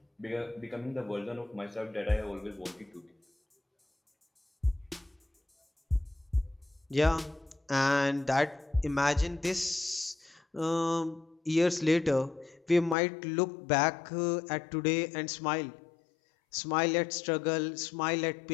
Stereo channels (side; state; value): right; drops out; at 13.0 s